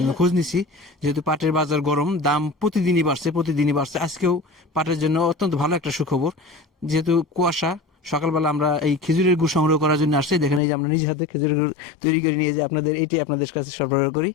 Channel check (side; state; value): right; drops out; at 10.6 s